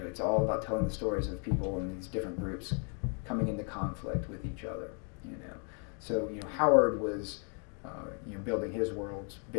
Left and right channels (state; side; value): quieter; right; 39.9 dB